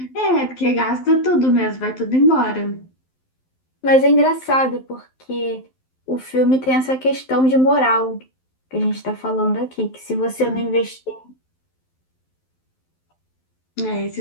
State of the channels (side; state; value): right; late; 12 ms